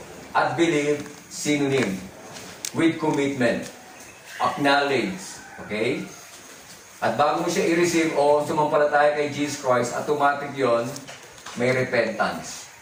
at believe, synonym. With commitment. Acknowledge. Okay? At bago mo siya i-receive o sumampalataya kay Jesus Christ, automatic yon may repentance.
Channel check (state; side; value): identical; both; correlation 1.00